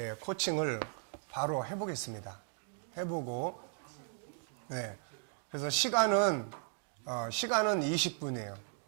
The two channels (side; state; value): left; silent; 54 dB below the other